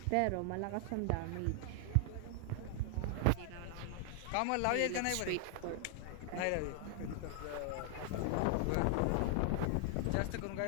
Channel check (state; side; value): different; both; correlation 0.00